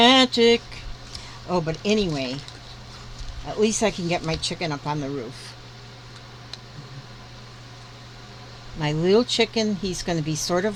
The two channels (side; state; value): both; identical; correlation 1.00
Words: Oh, but anyway, At least I can get my chicken up on the roof. My little chicken, he's going to be sort